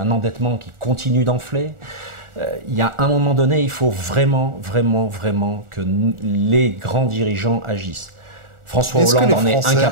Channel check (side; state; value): left; late; 1.4 ms